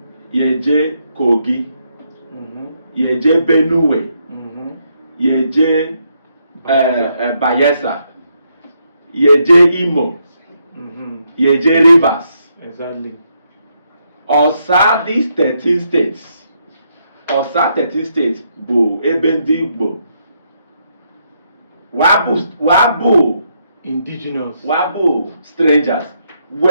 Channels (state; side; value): inverted; both; correlation -0.77